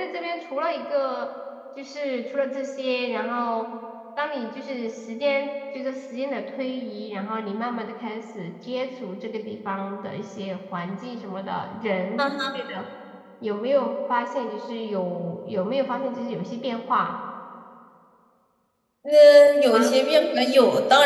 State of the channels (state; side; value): identical; both; correlation 1.00